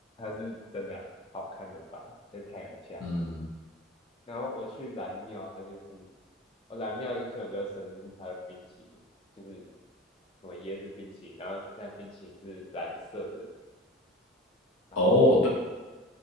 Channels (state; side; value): normal; both; correlation 0.32